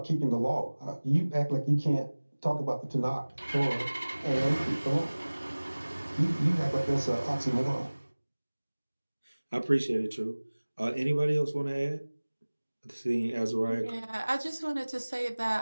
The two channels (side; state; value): both; inverted; correlation -1.00